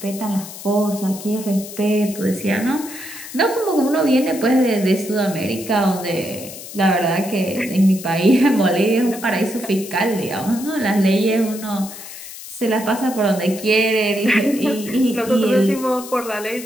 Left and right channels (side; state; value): left; noise; hiss, 13 dB below the sound